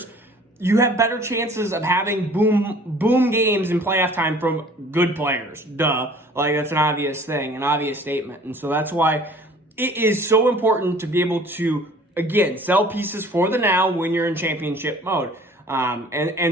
you have better chances of having boom games in playoff time from good players. Duh. Like, that's an obvious thing, an obvious statement. And so that's why it is so important to be able to, again, sell pieces for the now when you're in championship mode.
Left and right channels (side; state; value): both; normal; correlation 0.50